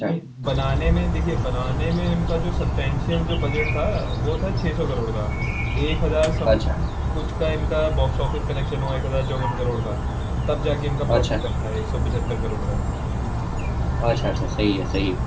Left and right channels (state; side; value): identical; both; correlation 1.00